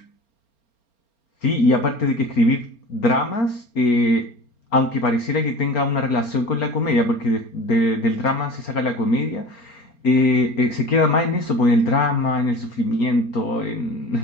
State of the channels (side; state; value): right; late; 4.3 ms